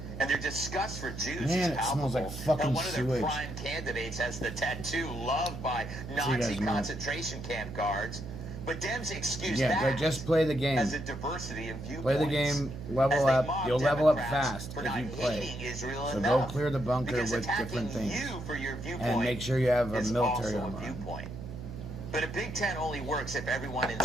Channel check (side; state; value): right; noise; hum, 10 dB below the sound